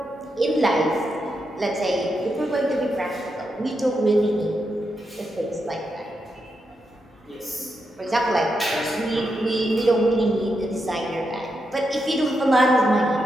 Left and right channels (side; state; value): both; normal; correlation 0.84